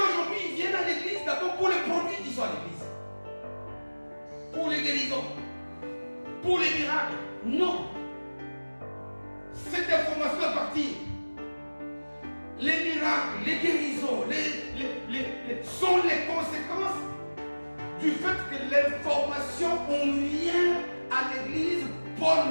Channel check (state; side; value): inverted; both; correlation -1.00